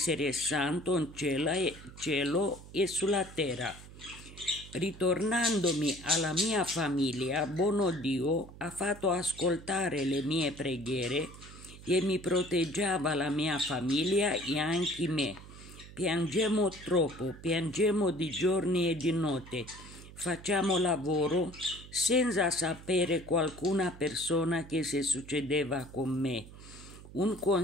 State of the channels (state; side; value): noise; right; hum, 17 dB below the sound